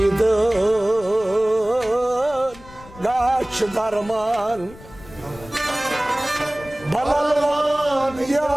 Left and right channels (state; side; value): noise; left; rumble, 20 dB below the sound